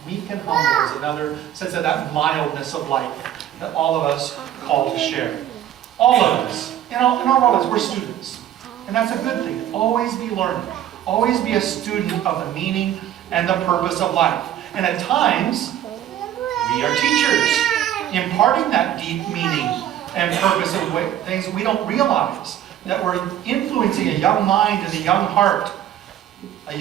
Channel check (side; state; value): left; quieter; 11.3 dB